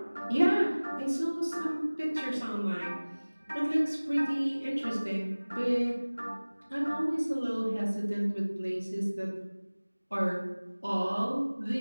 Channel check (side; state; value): both; inverted; correlation -1.00